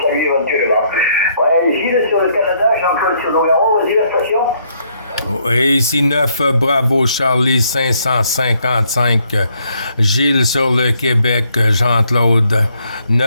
saluer éventuellement. Ouais, Gilles sur le Canada, Jean-Claude sur Nogaro, vas-y la station. Et ici 9 Bravo Charlie 555, Gilles sur le Québec, Jean-Claude.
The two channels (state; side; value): inverted; both; correlation -0.70